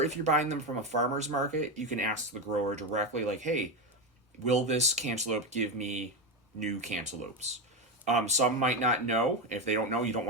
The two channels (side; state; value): both; normal; correlation 0.13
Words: if you're buying them from a farmer's market, you can ask the grower directly, like, hey, will this cantaloupe give me new cantaloupes? Some might not know. If they don't know, you don't